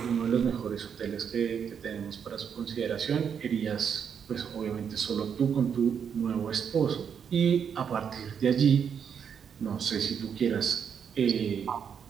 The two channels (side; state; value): left; quieter; 7.5 dB